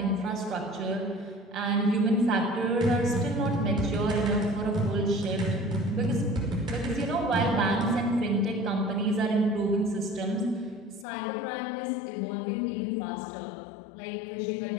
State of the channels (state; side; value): drops out; right; at 11.1 s